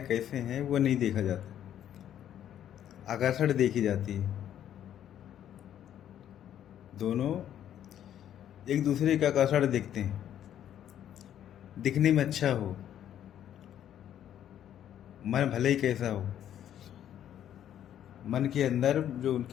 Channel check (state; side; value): quieter; right; 10.6 dB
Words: कैसे हैं, वो नहीं देखा जाता। आकर्षण देखी जाती है। दोनों एक दूसरे का आकर्षण देखते हैं, दिखने में अच्छा हो, मन भले ही कैसा हो, मन के अंदर जो